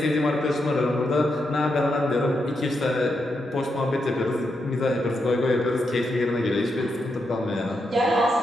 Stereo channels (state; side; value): normal; both; correlation 0.83